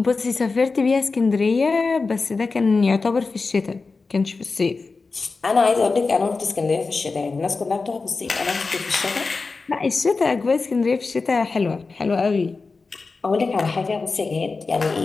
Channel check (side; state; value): right; quieter; 4.1 dB